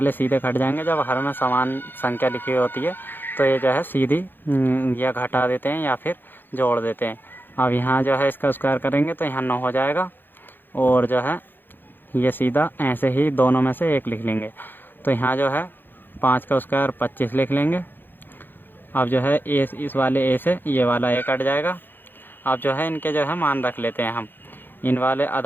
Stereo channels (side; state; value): right; late; 0.096 ms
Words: सीधे घट जाएंगे। जब हर में समान संख्या लिखी हुई होती है तो ये जो है सीधी या घटा देते हैं या फिर जोड़ देते हैं। अब यहाँ जो है इसका स्क्वायर करेंगे तो यहाँ 9 हो जाएगा, और जो है ये सीधा ऐसे ही दोनों में से 1 लिख लेंगे। तो यहाँ जो है 5 का स्क्वायर 25 लिख लेंगे। अब जो है ए इस वाले ए से ये वाला ए कट जाएगा। अब जो है इनके जो है मान रख लेते हैं हम। इन वाले